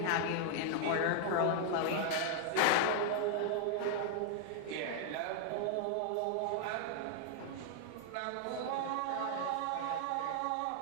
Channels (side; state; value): both; different; correlation 0.00